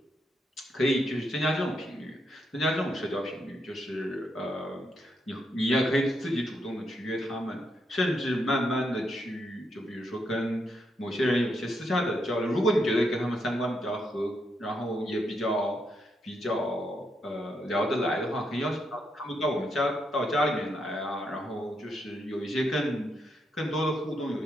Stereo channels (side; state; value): both; normal; correlation 0.80